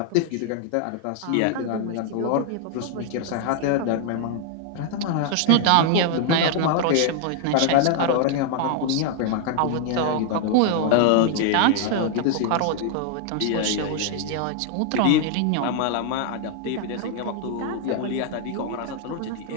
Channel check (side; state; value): both; different; correlation 0.00